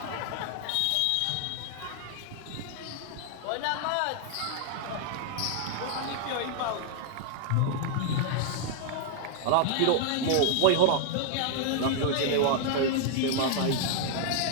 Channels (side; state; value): both; different; correlation 0.00